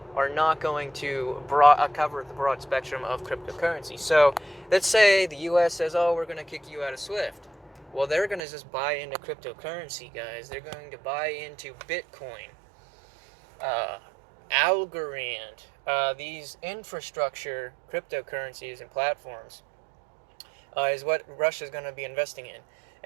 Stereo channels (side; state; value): left; drops out; at 8.4 s